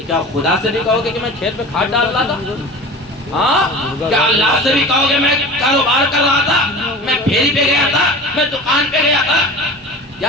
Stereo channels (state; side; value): normal; both; correlation 0.36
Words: کیا خدا سے بھی کہو گے کہ میں کھیت میں کھاد ڈال رہا تھا؟ ہاں کیا اللہ سے بھی کہو گے میں کاروبار کر رہا تھا، میں پھیری پہ گیا تھا، میں دکان پہ گیا تھا؟ یا